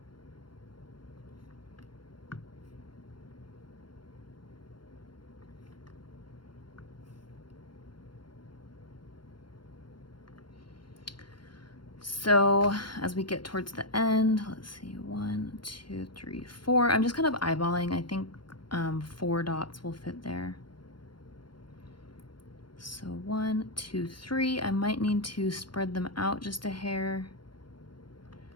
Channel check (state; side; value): late; right; 0.72 ms